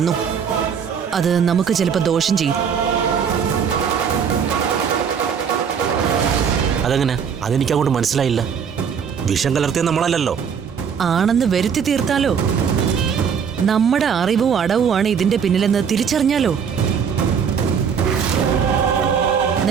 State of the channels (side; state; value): left; quieter; 7.0 dB